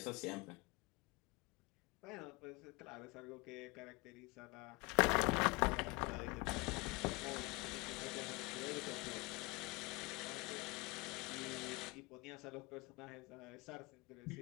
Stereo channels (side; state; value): right; quieter; 26.0 dB